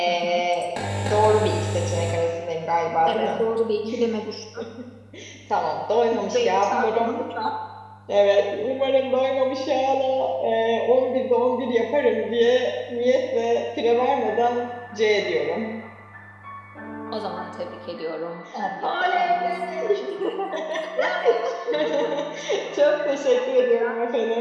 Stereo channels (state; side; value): identical; both; correlation 1.00